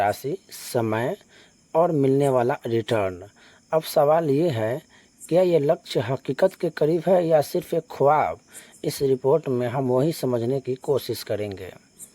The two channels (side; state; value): both; identical; correlation 1.00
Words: समय और मिलने वाला रिटर्न। अब सवाल ये है, क्या ये लक्ष्य हकीकत के करीब है या सिर्फ एक ख्वाब? इस रिपोर्ट में हम वही समझने की कोशिश करेंगे।